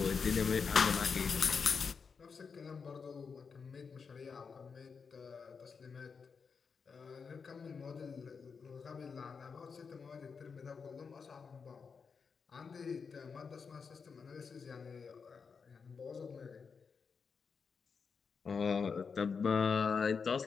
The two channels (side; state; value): right; quieter; 5.6 dB